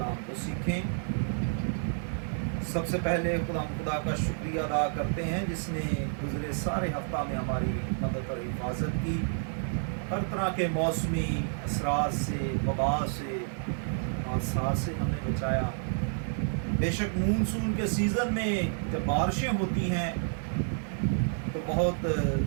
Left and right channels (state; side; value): silent; left; 58 dB below the other